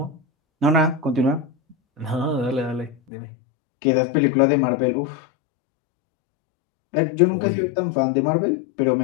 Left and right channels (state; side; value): drops out; right; at 3.0 s